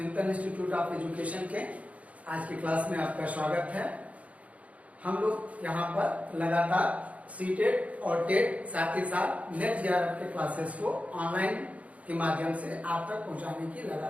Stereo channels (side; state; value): left; late; 0.067 ms